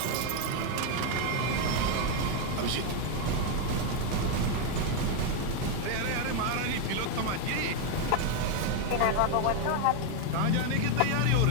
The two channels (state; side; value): different; both; correlation 0.01